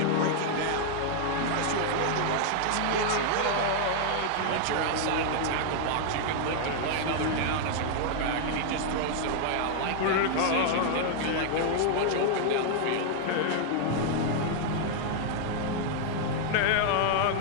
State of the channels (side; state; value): both; different; correlation 0.00